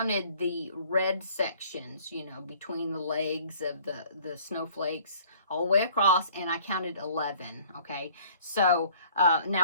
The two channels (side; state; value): both; inverted; correlation -0.54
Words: the red sections, you know, between the legs of the snowflakes all the way across, and I counted 11. Okay, so